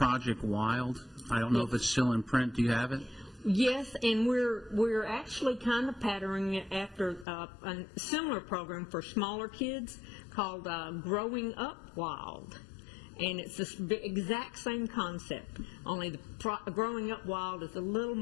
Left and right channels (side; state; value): right; drops out; at 7.2 s